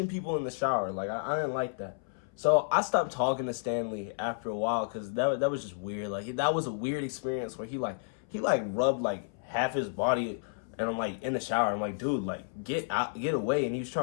people in the shower? Like, I didn't like that. So I stopped talking to Stanley after a while, because that was just weird. Like that was a weird experience where he rubbed like half his body, and I'm like in the shower. I'm like, dude, like get out, get away. And he was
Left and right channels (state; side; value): silent; right; 57 dB below the other